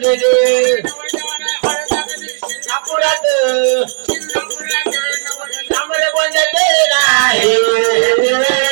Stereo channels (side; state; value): left; silent; digital silence